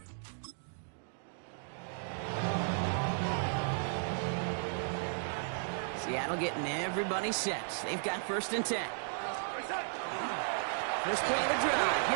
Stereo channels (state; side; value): silent; left; digital silence